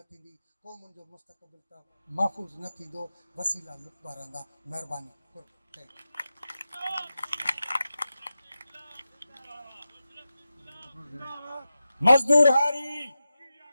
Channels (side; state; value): both; inverted; correlation -0.92